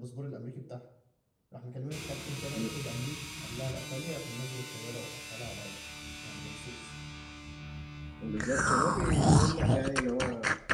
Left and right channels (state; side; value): identical; both; correlation 1.00